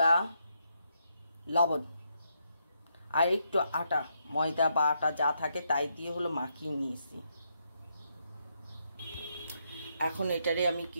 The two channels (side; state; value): both; inverted; correlation -0.78